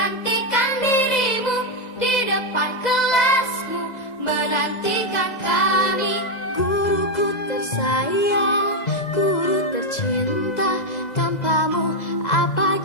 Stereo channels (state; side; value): late; right; 2.0 ms